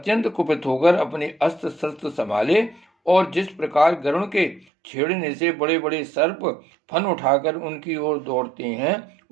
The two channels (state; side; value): drops out; left; at 4.7 s